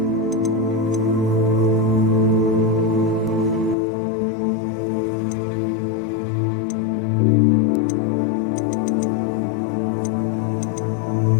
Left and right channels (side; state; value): right; drops out; at 3.8 s